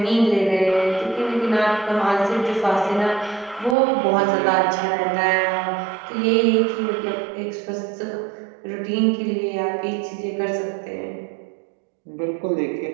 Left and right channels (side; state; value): left; drops out; at 3.8 s